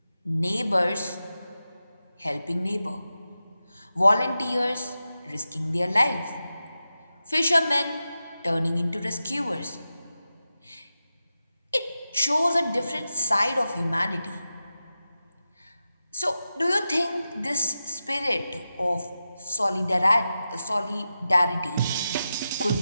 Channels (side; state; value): both; inverted; correlation -0.92